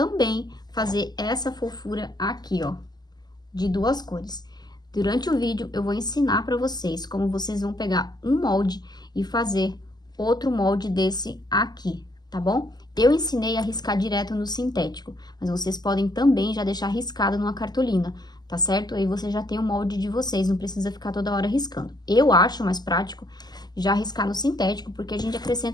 fazer essa fofura aqui, ó, de duas cores. Durante o vídeo eu vou ensinar para vocês como vocês vão pegar um molde e fazer outro molde desse aqui, tá bom? Eu ensinei a riscar direto no sintético, mas vocês podem também já deixar riscado numa cartolina, tá certo? Aí você já tem o molde de vocês, não precisa ficar toda hora riscando. Eu acho mais prático já riscar no sintético, porque a gente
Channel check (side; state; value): right; late; 0.20 ms